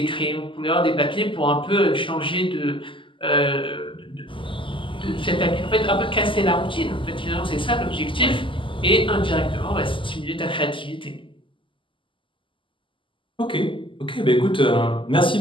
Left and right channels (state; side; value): late; right; 0.25 ms